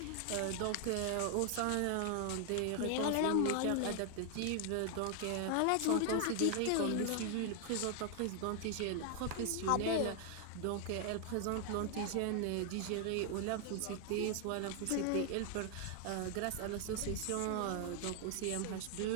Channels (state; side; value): different; both; correlation 0.00